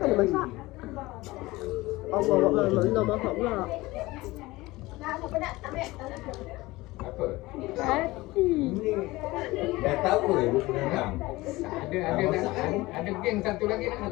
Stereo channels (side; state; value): right; quieter; 20.1 dB